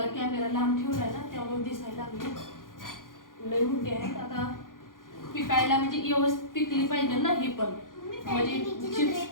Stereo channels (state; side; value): late; right; 0.90 ms